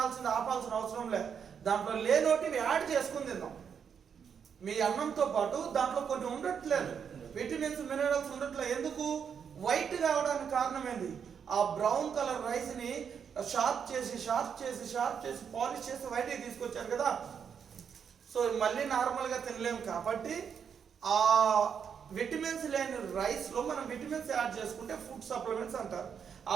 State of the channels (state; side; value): quieter; left; 7.2 dB